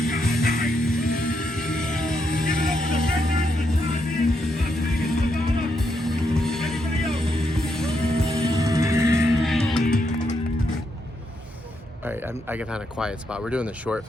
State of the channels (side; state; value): both; normal; correlation 0.79